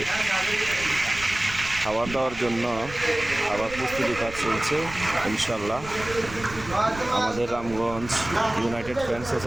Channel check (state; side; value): noise; right; rumble, 14 dB below the sound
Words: খাবার দেওয়ার জন্য খাবার প্রস্তুতি কাজ চলছে। ইনশাল্লাহ আমাদের রামগঞ্জ ইউনাইটেড ফ্রেন্ডস